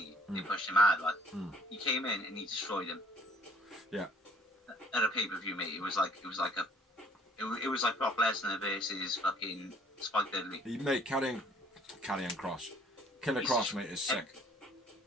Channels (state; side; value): normal; both; correlation 0.59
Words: they pushed him out. Like, he came in and he destroyed him. Yeah. At a pay-per-view, mate, it was like Brock Lesnar versus fucking Spike Dudley. Mate, carrying Cross. Killer Cross, mate, is sick.